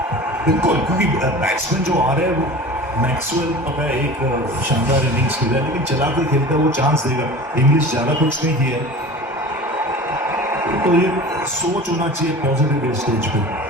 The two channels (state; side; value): normal; both; correlation 0.36